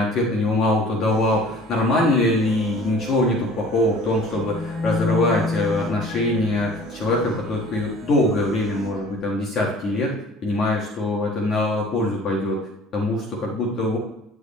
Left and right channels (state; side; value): normal; both; correlation 0.48